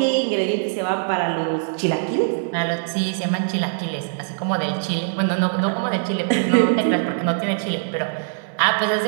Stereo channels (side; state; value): left; silent; 64 dB below the other